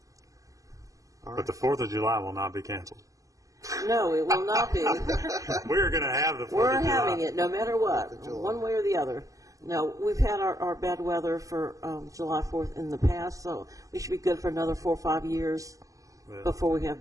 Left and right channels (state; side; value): late; left; 0.16 ms